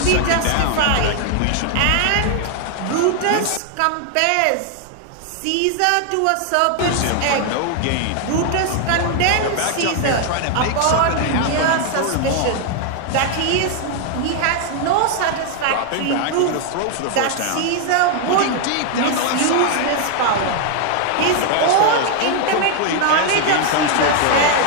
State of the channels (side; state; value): both; different; correlation 0.00